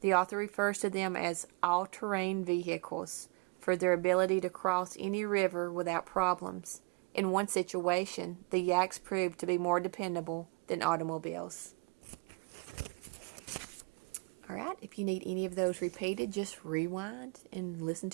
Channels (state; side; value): quieter; left; 29.0 dB